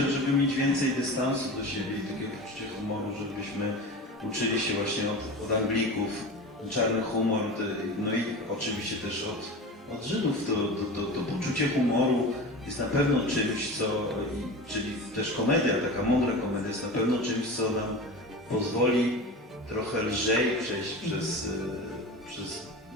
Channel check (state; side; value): normal; both; correlation 0.30